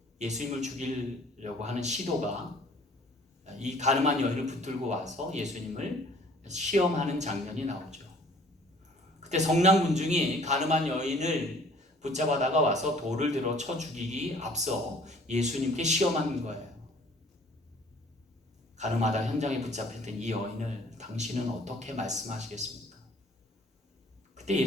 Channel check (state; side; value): normal; both; correlation 0.54